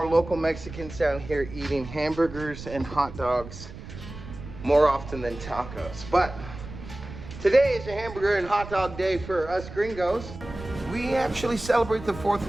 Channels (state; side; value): noise; right; rumble, 13 dB below the sound